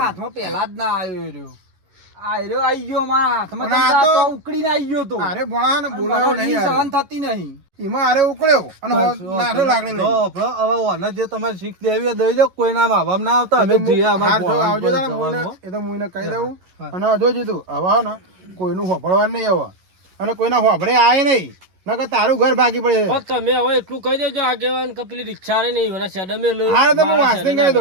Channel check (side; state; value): left; late; 11 ms